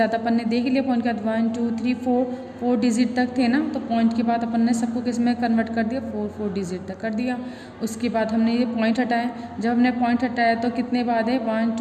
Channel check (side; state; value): both; identical; correlation 1.00